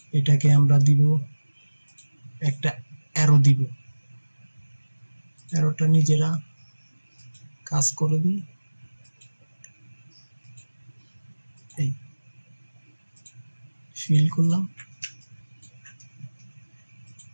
এটাকে আমরা দিব একটা অ্যারো দিব, অ্যারোটা নিজেরা কাজ করে দিই। এই ফিল করলাম,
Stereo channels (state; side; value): inverted; both; correlation -1.00